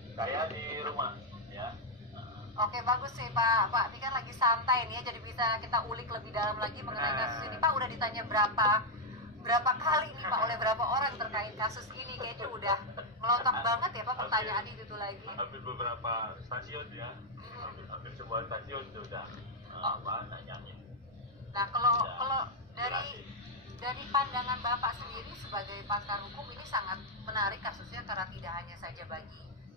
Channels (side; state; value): both; normal; correlation -0.01